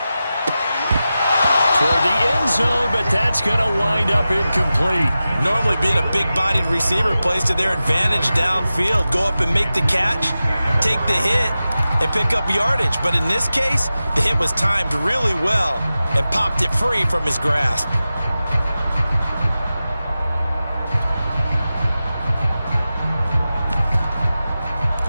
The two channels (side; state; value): both; inverted; correlation -0.94